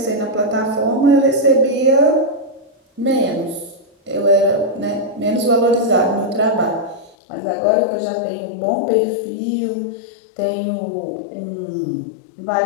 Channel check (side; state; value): right; drops out; at 7.2 s